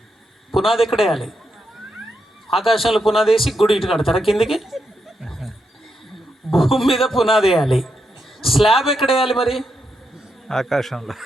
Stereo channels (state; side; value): normal; both; correlation 0.82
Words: పునాది ఎక్కడ వేయాలి? ఆకాశంలో పునాది వేసి గుడి ఇటు కడతారా కిందికి? భూమి మీద పునాది వేయాలి. స్లాబ్ ఎక్కడ వేయాలి మరి?